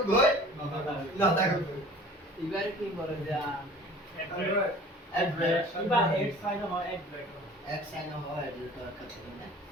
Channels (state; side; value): normal; both; correlation 0.46